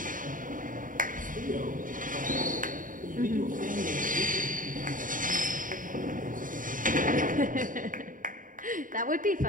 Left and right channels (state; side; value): late; left; 0.39 ms